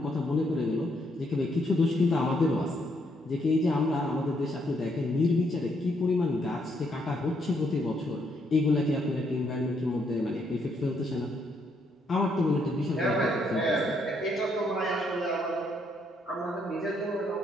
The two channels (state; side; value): normal; both; correlation 0.73